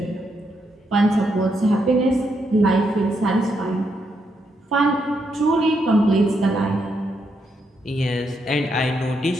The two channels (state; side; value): normal; both; correlation 0.79